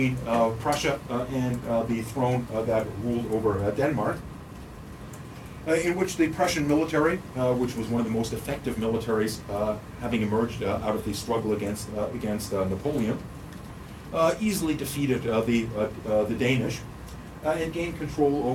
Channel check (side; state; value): both; identical; correlation 1.00